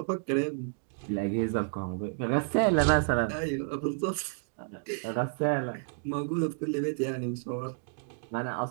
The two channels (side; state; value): left; silent; digital silence